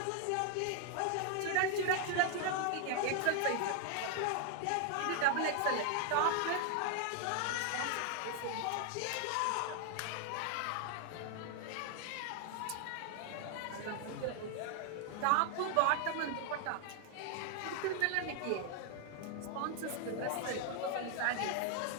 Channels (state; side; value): different; both; correlation 0.00